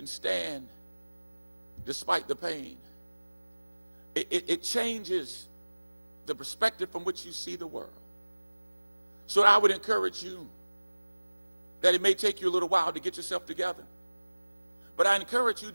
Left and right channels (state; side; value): inverted; both; correlation -1.00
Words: stand despite the pain, it changes the perspective from which you see the world. So I would encourage you that it may take you a little while to get yourself together, but I encourage you